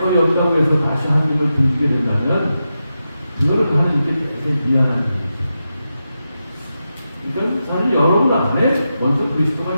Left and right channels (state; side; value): inverted; both; correlation -0.89